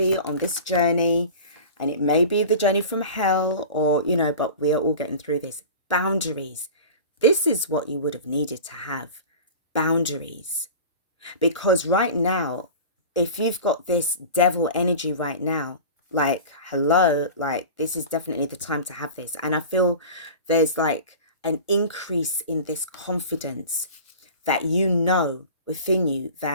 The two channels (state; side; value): inverted; both; correlation -0.36